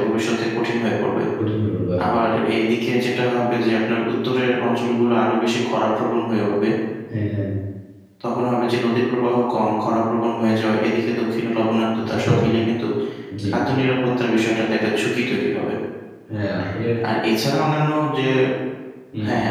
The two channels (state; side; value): identical; both; correlation 1.00